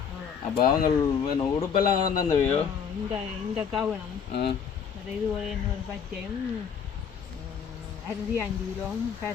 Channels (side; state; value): right; quieter; 7.1 dB